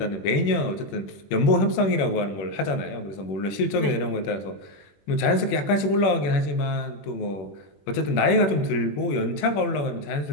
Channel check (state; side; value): late; right; 21 ms